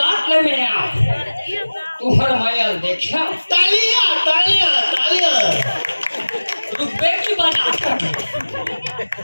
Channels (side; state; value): both; inverted; correlation -1.00